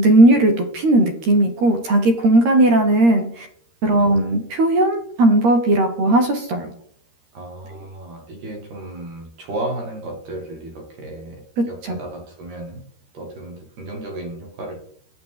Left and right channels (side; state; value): left; late; 13 ms